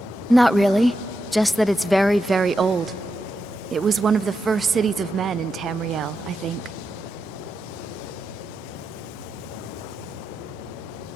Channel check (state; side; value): normal; both; correlation 0.86